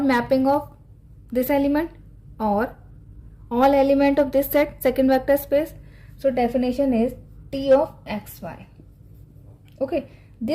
mapping of this element or all element of this set, second vector space. So definition is T of xy. Okay,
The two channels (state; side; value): identical; both; correlation 1.00